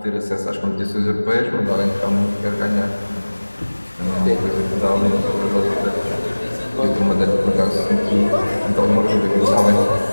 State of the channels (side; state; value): both; inverted; correlation -1.00